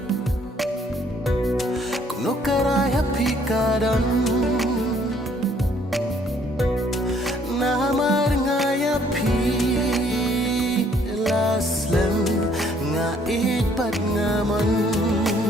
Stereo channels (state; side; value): normal; both; correlation 0.63